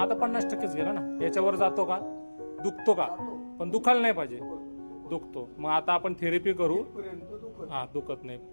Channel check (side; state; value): both; inverted; correlation -1.00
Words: तर 50%च गेला ना. याच्यावर जातो का? दुखतो का? पण दुखायला नाही पाहिजे. दुखतो. मग आता आपण थेरपी करू. इथपर्यंत दुखत हा, दुखत नाही.